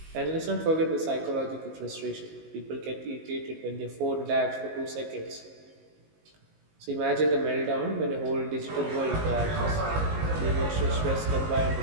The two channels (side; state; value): left; late; 19 ms